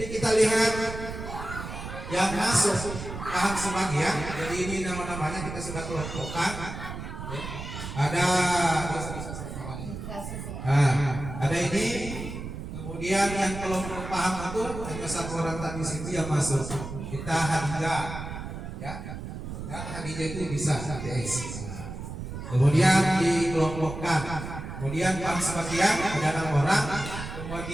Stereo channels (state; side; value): noise; right; rumble, 8 dB below the sound